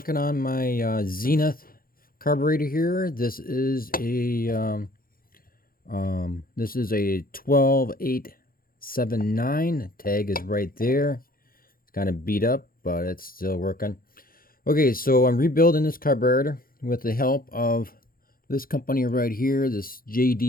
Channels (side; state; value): right; late; 0.42 ms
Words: on my Zenith carburetor here. This is a 12879. Tag is right there. It's kind of beat up, but it's still working. Okay, so I'm rebuilding this carburetor with the help of this company right here, this